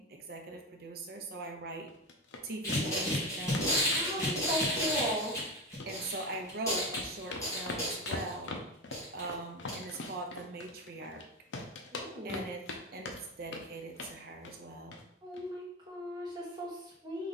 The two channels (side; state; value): both; normal; correlation 0.19